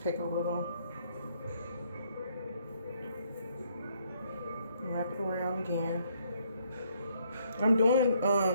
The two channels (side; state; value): both; inverted; correlation -0.69